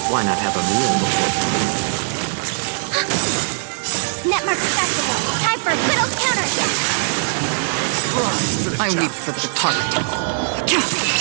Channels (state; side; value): silent; left; 66 dB below the other